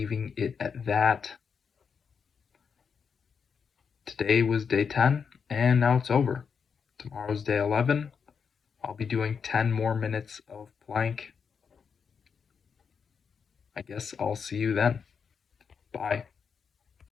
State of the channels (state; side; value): quieter; right; 6.3 dB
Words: it at that. Today was day 10, and now it's over. Tomorrow's day 11. I'll be doing 10 more minutes of plank. I guess I'll see you then. Bye.